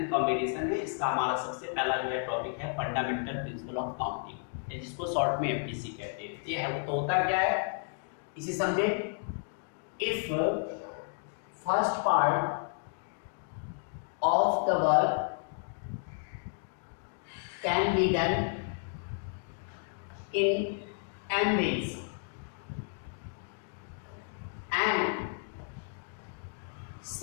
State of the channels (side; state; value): right; silent; 56 dB below the other